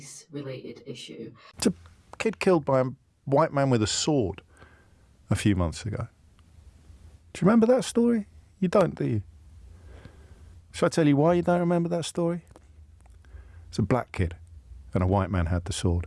related issue. It's a kid killed by a white man with a sword a few months ago. Do you remember that story? You don't, do you? Shall I tell you why you don't remember that story? It's a black kid and a white man had the sword.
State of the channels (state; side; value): identical; both; correlation 1.00